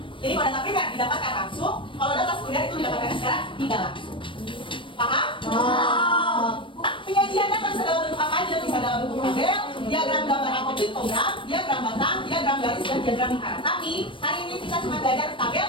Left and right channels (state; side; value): late; right; 0.25 ms